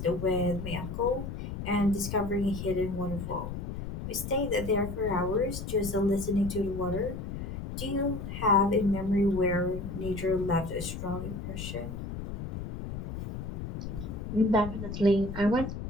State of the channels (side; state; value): left; noise; rumble, 6 dB below the sound